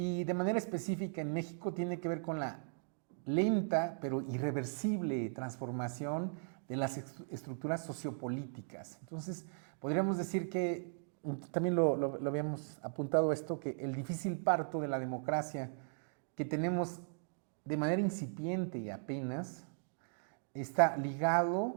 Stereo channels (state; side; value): silent; left; digital silence